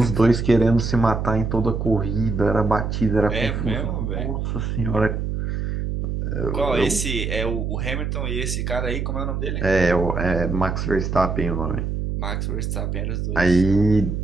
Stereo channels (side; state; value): right; noise; hum, 2 dB below the sound